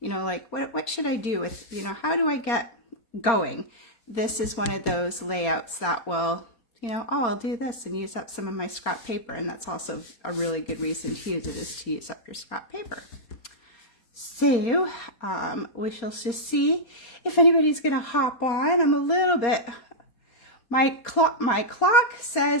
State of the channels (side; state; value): right; late; 4.3 ms